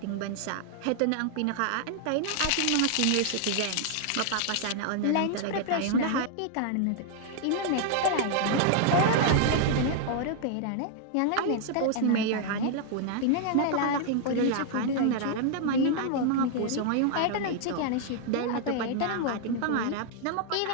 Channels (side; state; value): both; different; correlation 0.00